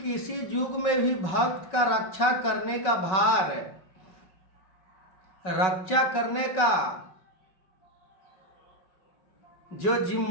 युग में भी भक्त का रक्षा करने का भार, रक्षा करने का जो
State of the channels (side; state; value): right; late; 5.4 ms